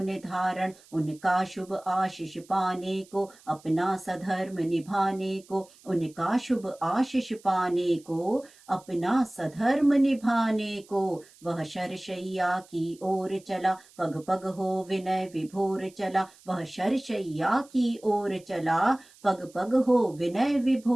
धारण। उनका शुभ आशीष पाने को, अपना सधर्म निभाने को। उनका शुभ आशीष पाने को, अपना सधर्म निभाने को। वह शरशैया की ओर चला, पग पग हो विनय विभोर चला। वह शरशैया की ओर चला, पग पग हो विनय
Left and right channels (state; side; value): noise; right; hiss, 26 dB below the sound